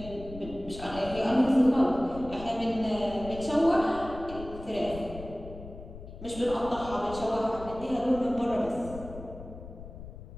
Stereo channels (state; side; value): noise; left; rumble, 13 dB below the sound